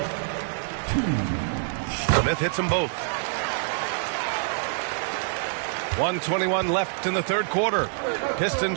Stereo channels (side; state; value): left; silent; digital silence